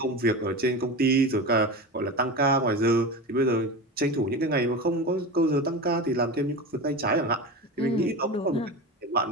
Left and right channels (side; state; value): both; normal; correlation 0.26